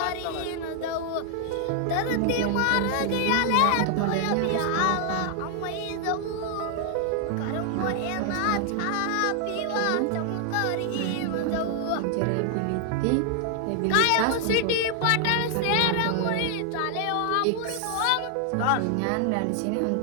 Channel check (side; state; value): both; different; correlation 0.00